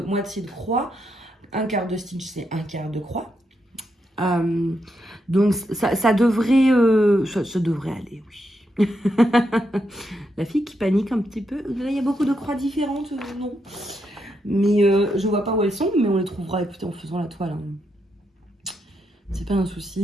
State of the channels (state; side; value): normal; both; correlation 0.82